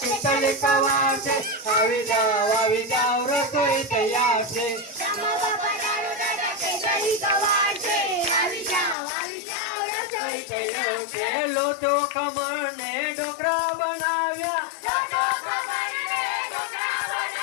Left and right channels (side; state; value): right; drops out; at 9.0 s